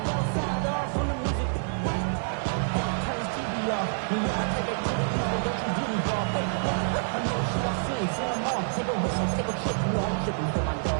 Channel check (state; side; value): silent; left; digital silence